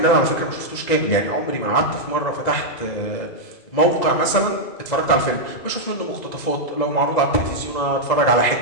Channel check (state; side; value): late; right; 2.0 ms